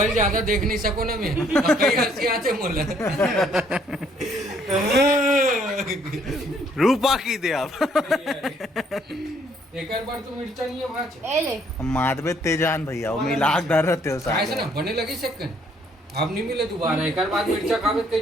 ज्यादा देख नहीं सको ना मैं और कई हंसी आते मोला रूपा की दे आप एक बार तो मिर्चा नहीं है भाच ए ले माधवे तेजान भैया वो मिलाक डर रहते हो ऐसे ना साथ बने लगी सेकंड अब नहीं मिले दोबारा एक बार मिर्चा खावे कई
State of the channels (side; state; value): both; normal; correlation 0.65